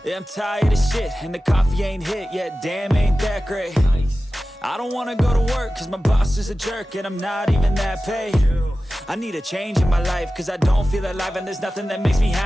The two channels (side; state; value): both; normal; correlation 0.95